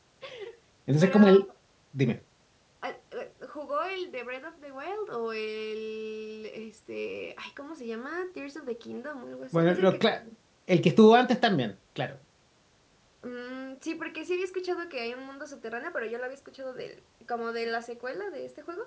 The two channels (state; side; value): identical; both; correlation 1.00